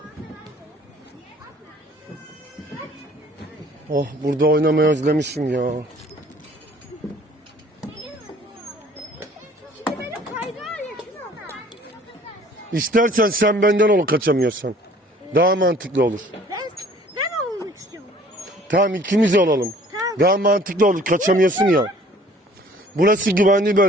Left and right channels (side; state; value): both; normal; correlation 0.53